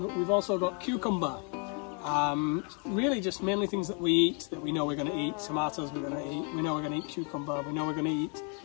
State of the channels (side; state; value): right; quieter; 37.7 dB